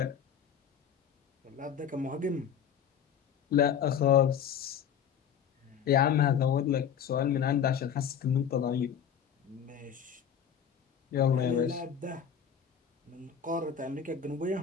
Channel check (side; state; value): right; quieter; 8.1 dB